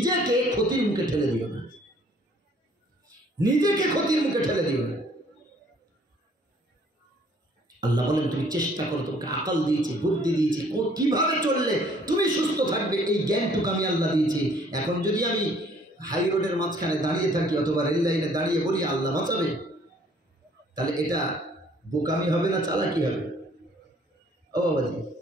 ক্ষতির মুখে ঠেলে দিও না, নিজেকে ক্ষতির মুখে ঠেলে দিও না। আল্লাহ বলেন, তুমি চেষ্টা করো, তোমাকে আকল দিয়েছি, বুদ্ধি দিয়েছি, কিভাবে চললে তুমি সুস্থ থাকবে, এই জ্ঞানটুকু আমি আল্লাহ দিয়েছি। এখন যদি আমি হাই রোডের মাঝখানে দাঁড়িয়ে থাকি অথবা রেল লাইনে দাঁড়িয়ে বলি আল্লাহ বাঁচাবে, তাহলে এটা বোকামি হবে না চালাকি হবে? ও বাবাজি,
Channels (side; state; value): both; normal; correlation 0.60